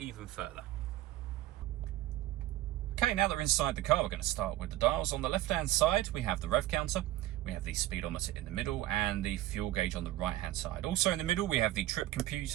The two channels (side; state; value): left; quieter; 15.3 dB